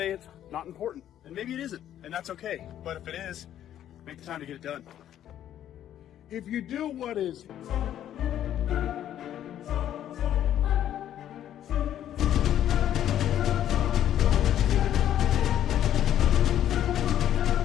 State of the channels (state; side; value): quieter; right; 11.1 dB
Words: it's not important. And maybe it isn't, and that's okay. But if it is, make the time to get it done. If you do what is